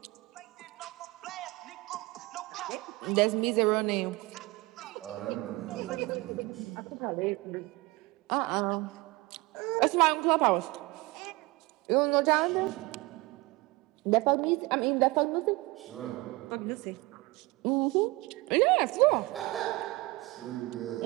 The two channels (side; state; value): left; quieter; 22.5 dB